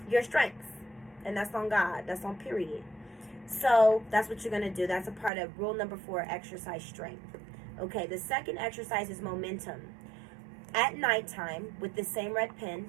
your strengths. And that's on God. That's on period. So that's what you're going to do. That's a part of rule number 4, exercise strength. Okay, the second exercise is momentum. At nighttime, with the same red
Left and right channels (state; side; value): drops out; left; at 5.3 s